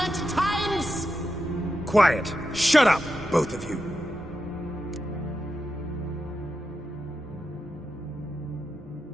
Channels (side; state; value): both; normal; correlation 0.88